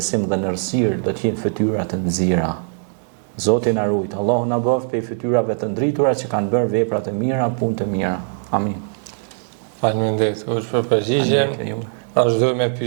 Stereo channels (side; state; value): left; silent; digital silence